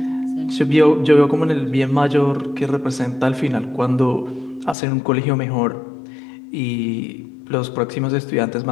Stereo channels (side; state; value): right; drops out; at 4.8 s